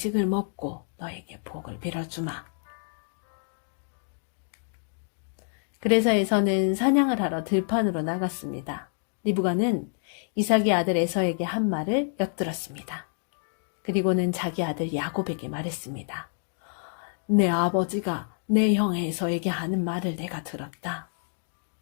먹고 너에게 복을 빌어주마. 그래서 에서는 사냥을 하러 들판으로 나갔습니다. 리브가는 이삭의 아들 에서에게 한 말을 엿들었습니다. 그리고는 자기 아들 야곱에게 말했습니다. 내 아버지가 내 형 에서에게 하는 말을 내가 들었다.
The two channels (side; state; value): right; silent; 55 dB below the other